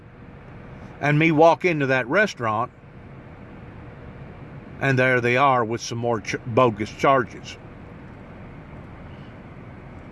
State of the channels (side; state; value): both; identical; correlation 1.00